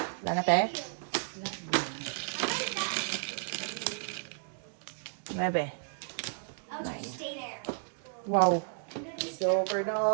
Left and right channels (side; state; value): left; silent; digital silence